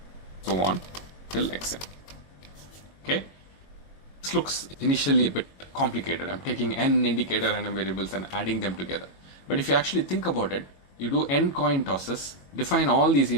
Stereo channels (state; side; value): late; right; 22 ms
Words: so on till xn. Okay, this looks initially a bit complicated. I'm taking n indicator random variables and adding them together. But if you actually think about it, you do n coin tosses, define all these